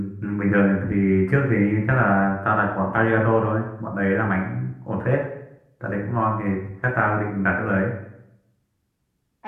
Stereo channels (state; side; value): identical; both; correlation 1.00